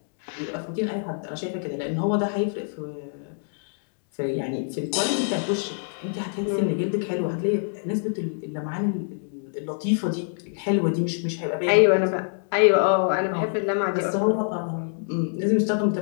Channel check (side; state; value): right; silent; digital silence